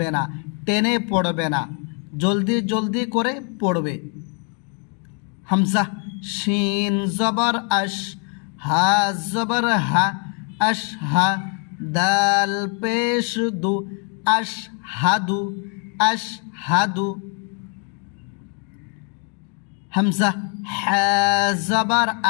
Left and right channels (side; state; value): right; quieter; 39.6 dB